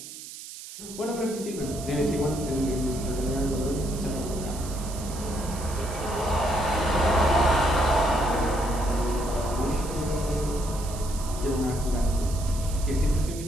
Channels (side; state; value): right; noise; hiss, 13 dB below the sound